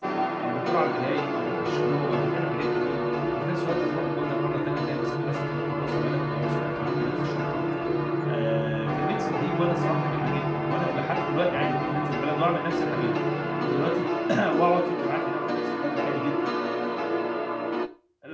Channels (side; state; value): both; identical; correlation 1.00